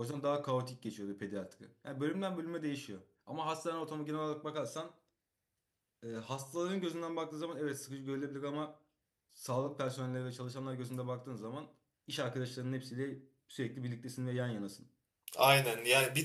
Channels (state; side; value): identical; both; correlation 1.00